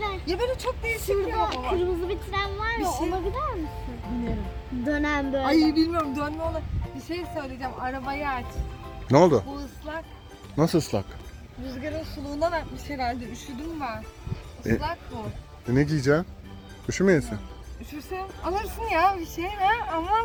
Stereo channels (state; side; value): identical; both; correlation 1.00